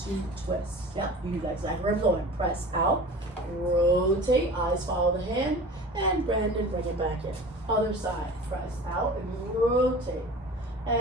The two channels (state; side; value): normal; both; correlation 0.38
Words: twists. Yeah, you do that exactly where I'm going. Press out, rotate, eyes follow the hand, and bend and bring it back in. Other side, press out and rotate.